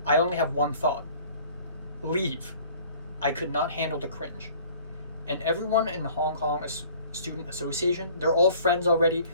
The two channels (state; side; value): inverted; both; correlation -0.51